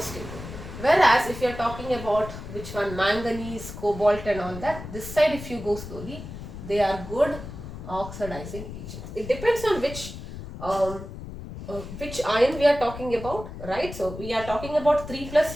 stable. Whereas if you are talking about which one, manganese, cobalt and all that, this side if you go slowly, they are good oxidizing agents. It depends on which ion we are talking about, right? So we are talking about 3 plus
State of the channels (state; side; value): noise; left; rumble, 11 dB below the sound